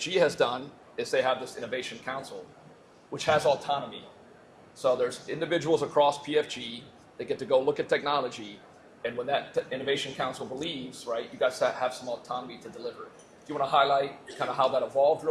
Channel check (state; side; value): identical; both; correlation 1.00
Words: has done is they have this Innovation Council, which has autonomy. So there's individuals across PFG that get to go look at technology, and when that Innovation Council believes, right, you guys have some autonomy to deliver. Do you want to highlight kind of how that evolved